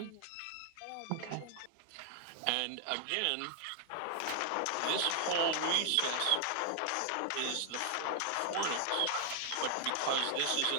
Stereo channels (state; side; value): different; both; correlation 0.00